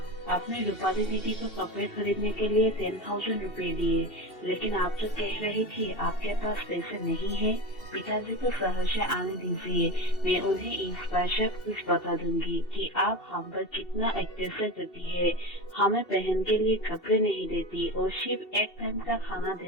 आपने रूपाली दीदी को कपड़े खरीदने के लिए 10,000 रुपए दिए, लेकिन आप तो कह रही थी आपके पास पैसे नहीं है। पिताजी को शहर से आने दीजिए, मैं उन्हें इस बार सब कुछ बता दूंगी कि आप हम पर कितना अत्याचार करती है। हमें पहन के लिए कपड़े नहीं देती और सिर्फ एक टाइम का खाना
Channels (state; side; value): late; right; 2.7 ms